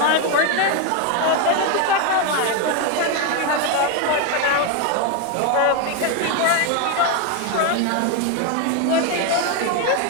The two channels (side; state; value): both; different; correlation 0.01